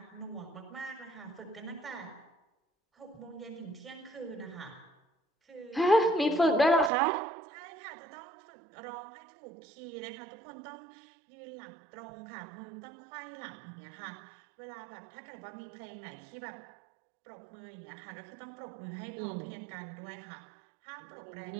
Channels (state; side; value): drops out; left; at 6.9 s